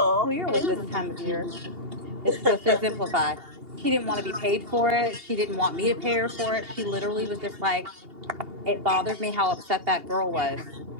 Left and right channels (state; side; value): late; left; 2.8 ms